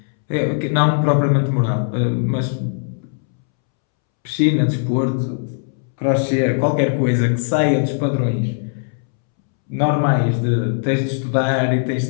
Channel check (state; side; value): silent; right; 66 dB below the other